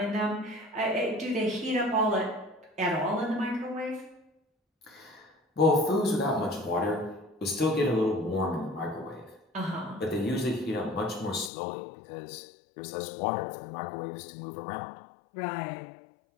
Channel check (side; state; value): right; drops out; at 11.5 s